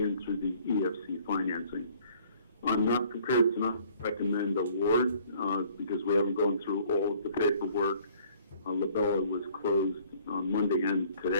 through the EFC financing. I'm not prepared to not recommend award because we haven't gone through all of the paperwork. Labella was closed on Monday and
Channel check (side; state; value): both; inverted; correlation -0.57